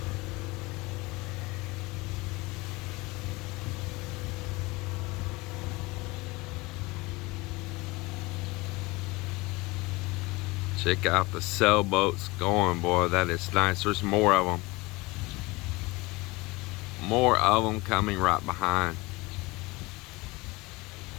Check out the sailboats going, boy. That is nice. There's more of them. More of them coming right behind.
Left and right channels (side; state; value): right; quieter; 23.0 dB